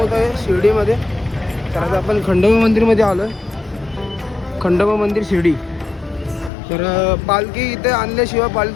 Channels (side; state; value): right; drops out; at 6.5 s